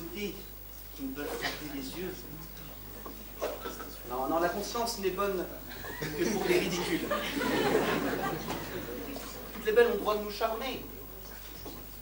qui nous peuvent frapper les yeux. Non, non, la conscience n'est bonne que pour les ridicules. Toutes les belles ont le droit de nous charmer.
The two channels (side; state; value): both; identical; correlation 1.00